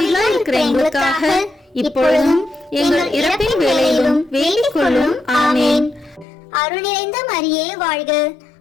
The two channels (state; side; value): drops out; right; at 6.2 s